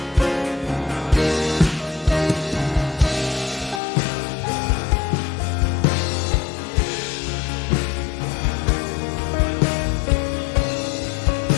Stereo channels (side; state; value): right; drops out; at 3.8 s